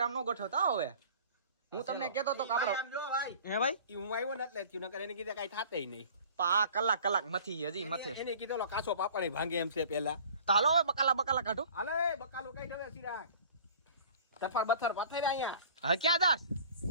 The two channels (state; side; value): inverted; both; correlation -0.46